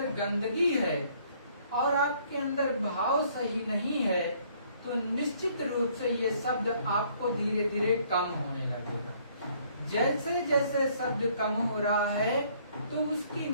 गंदगी है और आपके अंदर भाव सही नहीं है तो निश्चित रूप से ये शब्द आपको धीरे धीरे कम होने लगेगा। जैसे जैसे शब्द कम हो रहा है तो उसकी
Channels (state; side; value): inverted; both; correlation -0.62